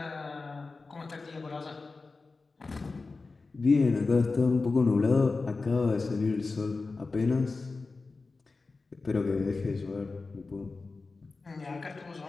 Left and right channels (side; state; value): right; quieter; 3.9 dB